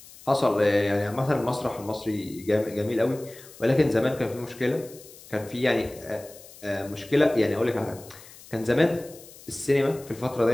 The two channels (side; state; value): left; noise; hiss, 20 dB below the sound